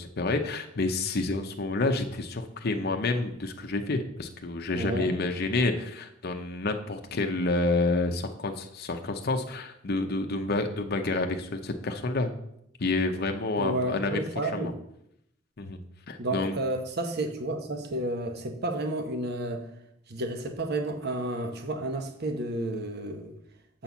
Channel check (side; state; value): both; normal; correlation 0.34